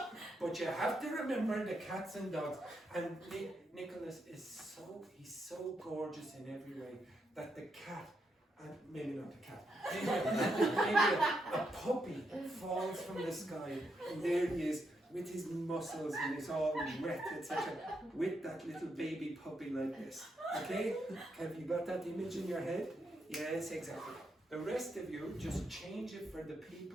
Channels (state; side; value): normal; both; correlation 0.81